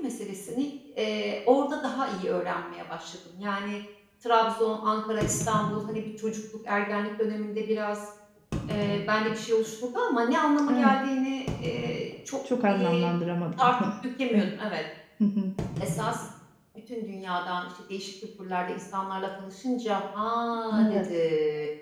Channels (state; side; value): identical; both; correlation 1.00